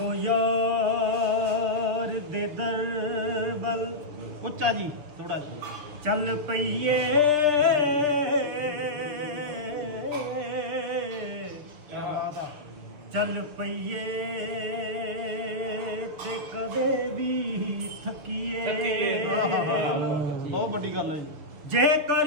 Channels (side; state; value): left; late; 6.7 ms